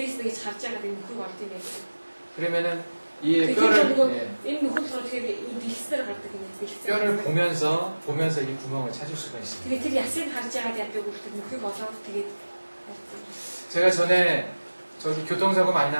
нэг харж байгаад энэ нөхөг олд юм байдаг. 그러면은 이 뼈를 энэ нөхөд болохоор тэгээд дэлгэсээр гардаг юм бэлтгэл. 뼈를 보면서 이 구멍을 찾을 수가 있습니다. тэгээд тэр ясыг харж байгаад яадаг үлдэх нөхөг олоод тэгээд 제가 전에 저기 교통사고 많이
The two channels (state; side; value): inverted; both; correlation -1.00